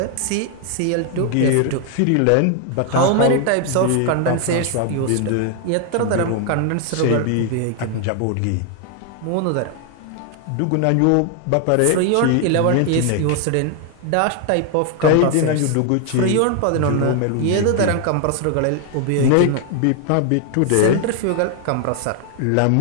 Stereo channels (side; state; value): both; different; correlation 0.00